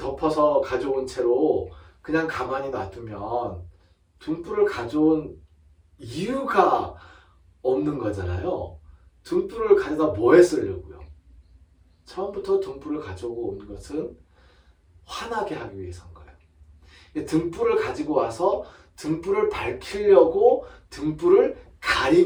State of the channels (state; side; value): identical; both; correlation 1.00